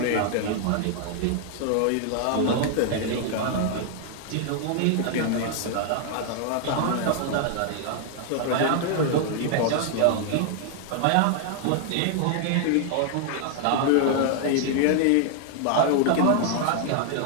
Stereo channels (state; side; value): different; both; correlation 0.00